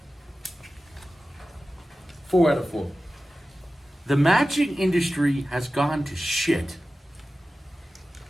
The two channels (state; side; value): normal; both; correlation 0.95